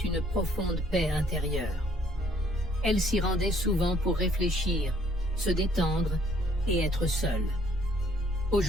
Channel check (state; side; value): normal; both; correlation 0.63